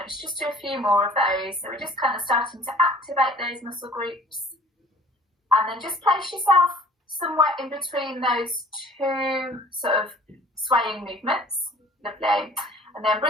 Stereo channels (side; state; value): both; normal; correlation 0.50